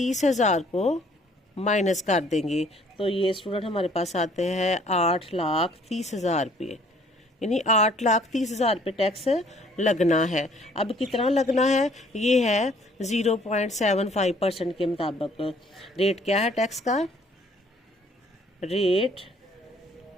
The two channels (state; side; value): normal; both; correlation 0.59